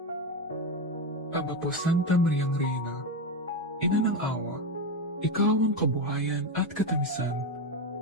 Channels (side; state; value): both; normal; correlation 0.13